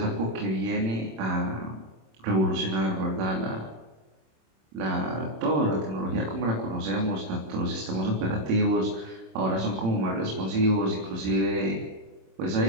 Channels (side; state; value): left; late; 26 ms